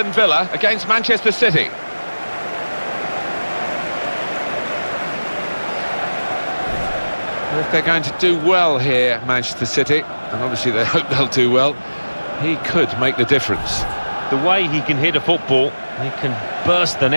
Villa against Manchester City. Well, if they're going to do well here, Manchester City, and obviously they hope they'll do well, he could make the difference. The way he can hit a football, he can burst the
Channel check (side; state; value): both; inverted; correlation -1.00